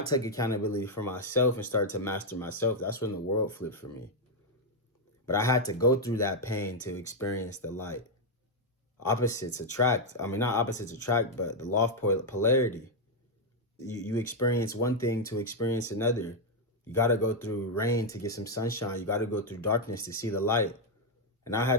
took accountability for myself and started to master myself, that's when the world flipped for me. But I had to go through that pain to experience the light. Opposites attract. I mean, not opposites attract, but the law of polarity. You experience one thing to experience another. You got to go through rain to get some sunshine. You got to go through darkness to see the light. And I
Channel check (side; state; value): both; normal; correlation 0.00